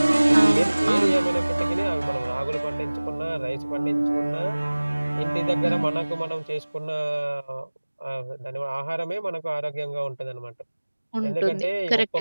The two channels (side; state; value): both; inverted; correlation -1.00